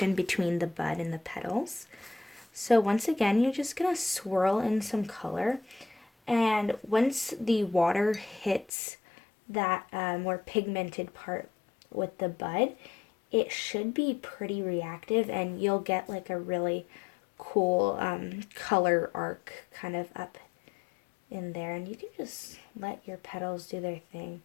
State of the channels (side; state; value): right; drops out; at 8.7 s